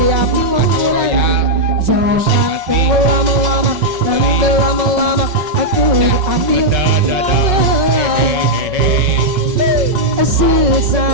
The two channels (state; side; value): late; left; 5.4 ms